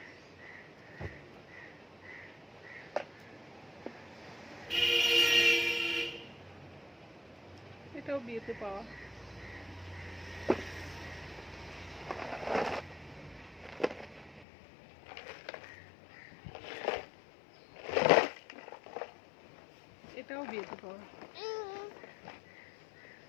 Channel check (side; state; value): right; drops out; at 14.5 s